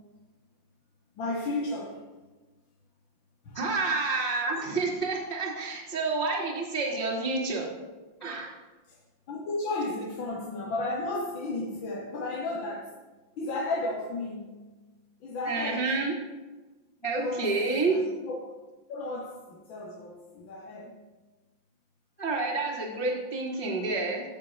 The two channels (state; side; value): late; right; 5.5 ms